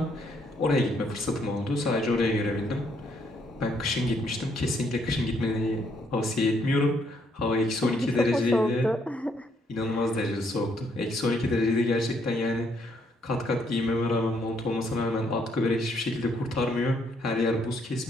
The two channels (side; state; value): both; normal; correlation 0.71